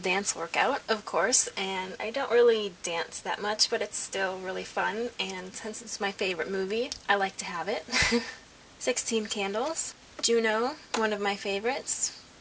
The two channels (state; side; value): identical; both; correlation 1.00